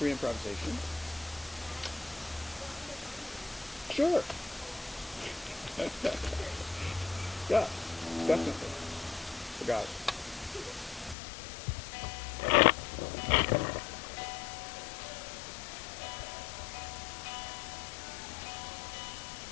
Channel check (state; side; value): drops out; right; at 11.2 s